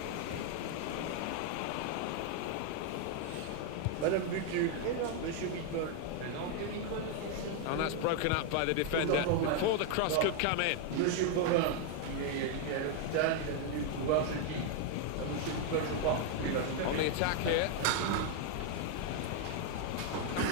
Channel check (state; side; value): different; both; correlation 0.00